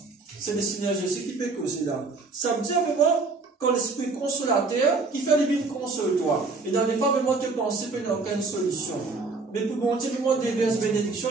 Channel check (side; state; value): left; quieter; 3.9 dB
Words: C'est le Seigneur Jésus qui peut causer là. Ça veut dire vraiment quand l'Esprit consolateur qui fait le bien console toi. Et dans les fois vraiment te penser qu'il n'y a aucune solution. Mais pour bon Dieu vraiment déverse bénédiction,